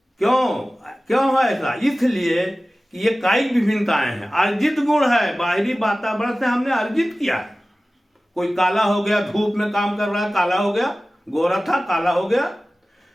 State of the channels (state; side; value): normal; both; correlation 0.97